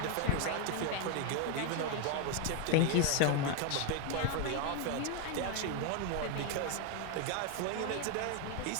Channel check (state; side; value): different; both; correlation 0.01